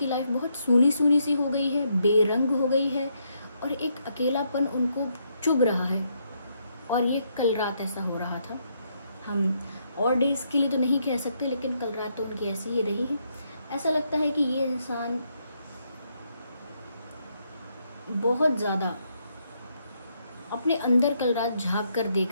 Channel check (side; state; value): both; inverted; correlation -0.76